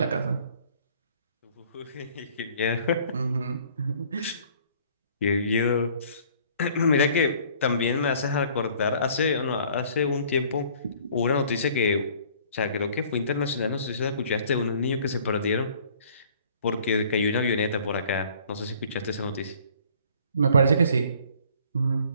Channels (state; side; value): inverted; both; correlation -0.55